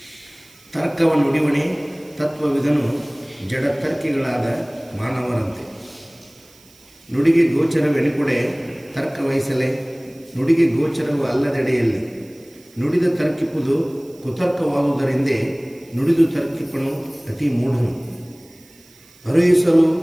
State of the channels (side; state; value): right; noise; hiss, 27 dB below the sound